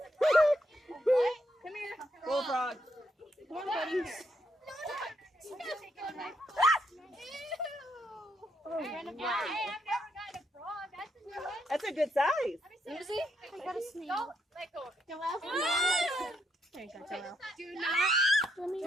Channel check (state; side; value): normal; both; correlation 0.76